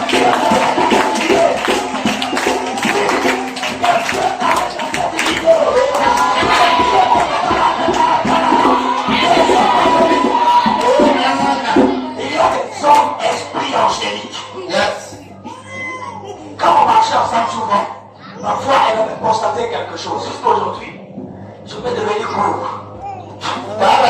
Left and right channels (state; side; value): identical; both; correlation 1.00